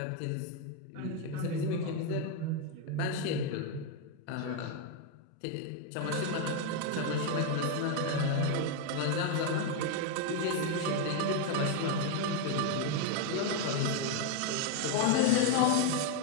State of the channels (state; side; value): different; both; correlation 0.01